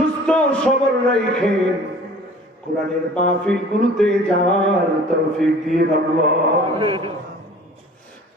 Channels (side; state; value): both; normal; correlation 0.47